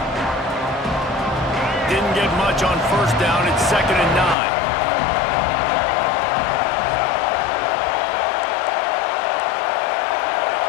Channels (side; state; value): right; drops out; at 4.4 s